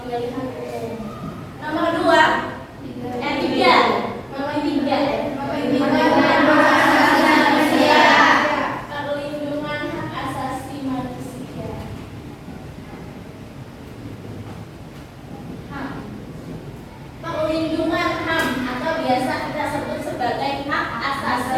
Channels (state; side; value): identical; both; correlation 1.00